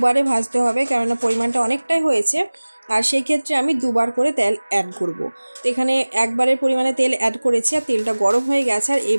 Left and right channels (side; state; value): both; inverted; correlation -1.00